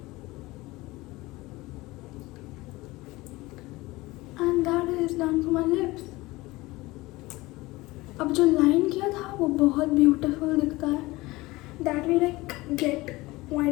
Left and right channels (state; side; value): quieter; right; 20.6 dB